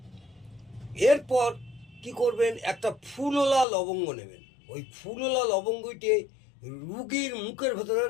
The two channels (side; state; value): right; drops out; at 3.7 s